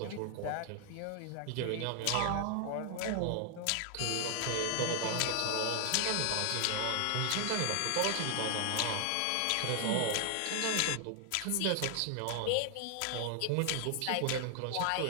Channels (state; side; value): different; both; correlation 0.00